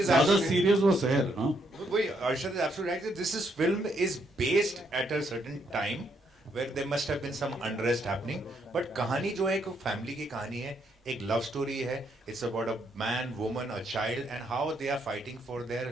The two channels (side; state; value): both; normal; correlation 0.74